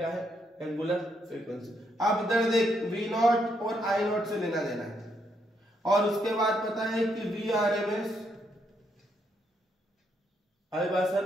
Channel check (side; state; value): both; normal; correlation 0.76